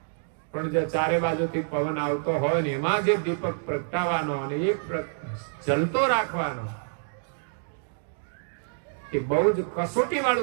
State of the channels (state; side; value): silent; left; digital silence